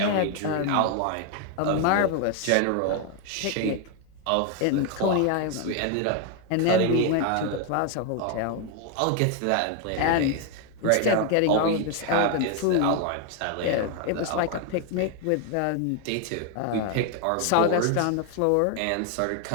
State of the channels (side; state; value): both; different; correlation 0.01